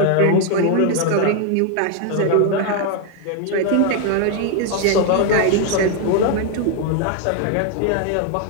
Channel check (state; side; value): different; both; correlation 0.01